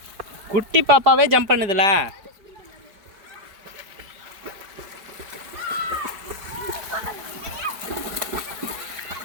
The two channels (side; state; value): left; late; 4.9 ms